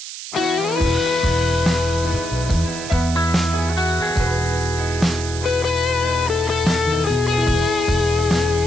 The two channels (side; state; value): right; noise; hiss, 10 dB below the sound